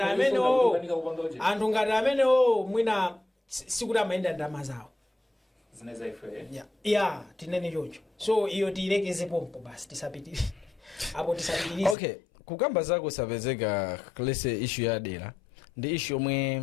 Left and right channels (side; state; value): right; drops out; at 12.0 s